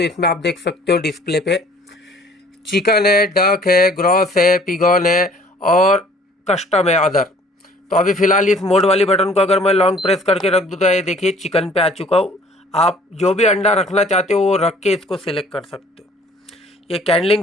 इसमें आप देख सकते हो डिस्प्ले पे चिकन है, डक है, ग्रॉस है, पिगॉन है और कस्टम है, अदर। तो अभी फ़िलहाल इस मोड वाली बटन को अगर मैं लॉन्ग प्रेस करके रख दूँ तो ये देखिए चिकन पे आ चुका हूँ। आप जो भी अंडा रखना चाहते हो वो रख के इसको सिलेक्ट कर सकते हो। ये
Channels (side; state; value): both; normal; correlation 0.54